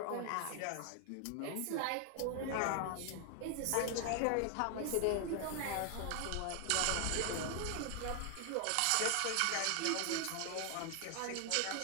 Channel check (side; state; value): both; different; correlation 0.00